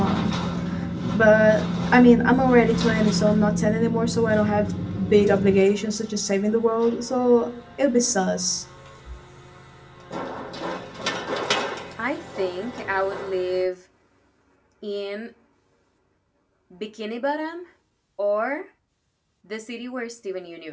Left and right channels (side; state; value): both; identical; correlation 1.00